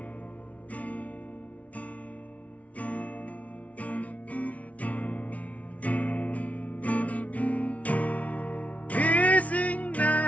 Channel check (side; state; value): right; late; 0.067 ms